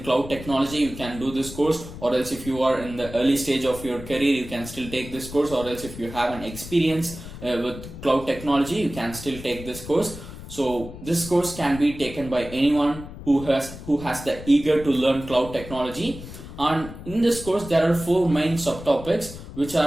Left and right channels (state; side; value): noise; left; rumble, 13 dB below the sound